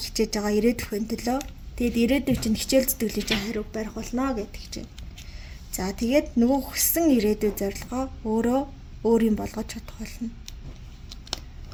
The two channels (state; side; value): identical; both; correlation 1.00